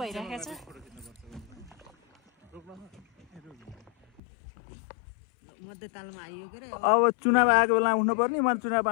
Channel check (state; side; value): drops out; right; at 4.2 s